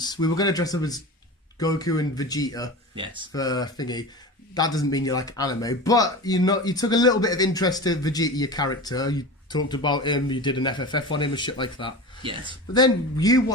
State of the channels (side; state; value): both; normal; correlation 0.30